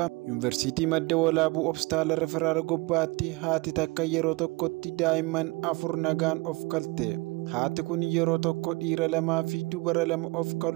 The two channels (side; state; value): left; quieter; 24.9 dB